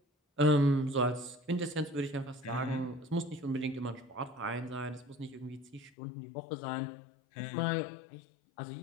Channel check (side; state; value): right; drops out; at 5.9 s